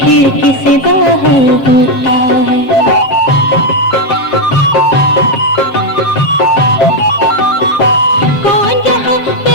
खिड़की से बाहर होता है। कौन यहाँ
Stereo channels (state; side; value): late; right; 7.4 ms